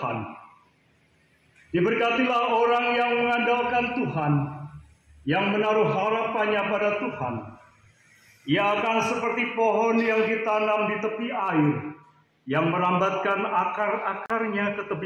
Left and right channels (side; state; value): both; identical; correlation 1.00